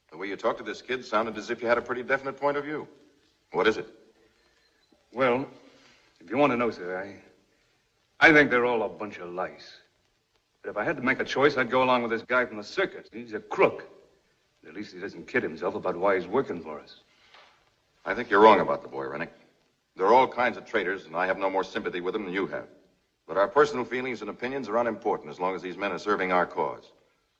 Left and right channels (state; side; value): identical; both; correlation 1.00